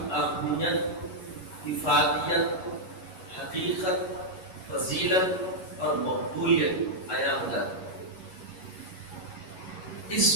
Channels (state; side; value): late; right; 11 ms